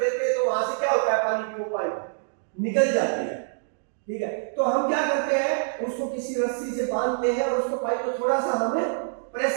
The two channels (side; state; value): left; silent; digital silence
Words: हैं तो वहां से क्या होता है? पानी की वो पाइप निकल जाती है, ठीक है। तो हम क्या करते हैं? उसको किसी रस्सी से बांधते हैं और उसको पाइप को थोड़ा सा हमें